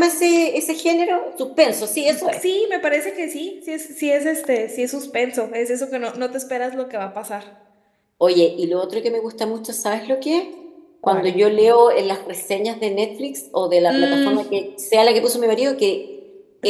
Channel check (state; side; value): identical; both; correlation 1.00